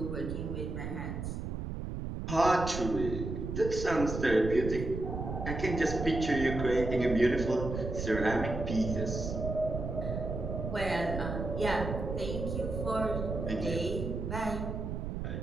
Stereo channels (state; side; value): noise; right; rumble, 4 dB below the sound